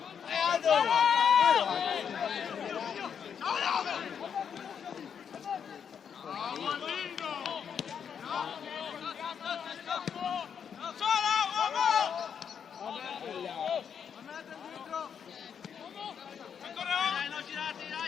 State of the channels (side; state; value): right; quieter; 7.5 dB